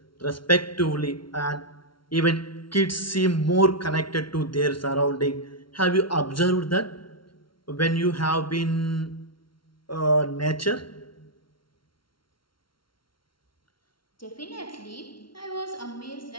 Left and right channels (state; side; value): late; right; 0.74 ms